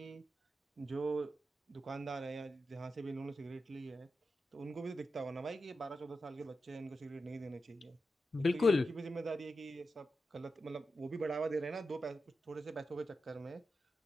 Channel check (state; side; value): normal; both; correlation 0.89